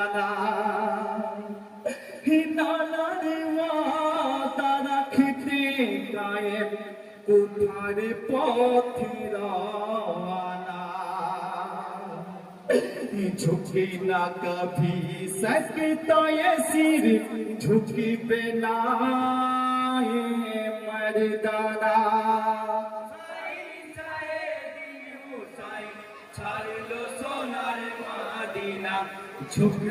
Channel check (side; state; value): both; identical; correlation 1.00